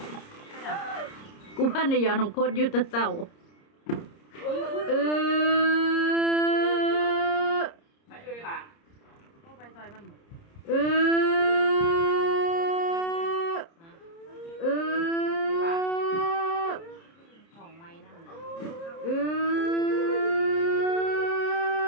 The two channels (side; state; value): right; late; 30 ms